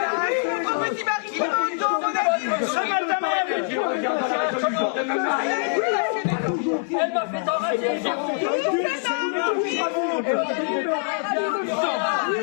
Petit mari, Elle m'a fait enrager!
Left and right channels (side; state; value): right; silent; digital silence